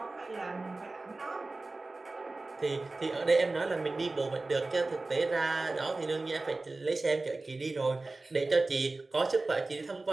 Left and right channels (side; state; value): left; quieter; 3.3 dB